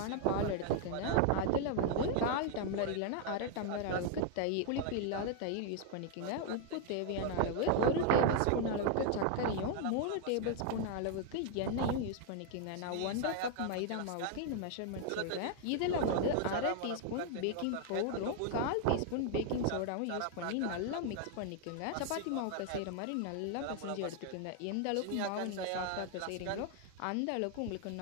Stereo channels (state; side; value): different; both; correlation 0.00